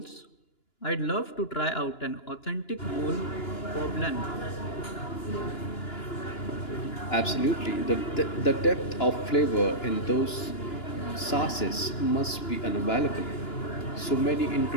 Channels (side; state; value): right; late; 2.9 ms